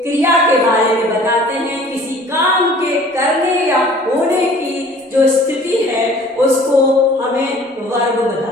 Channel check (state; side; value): normal; both; correlation 0.50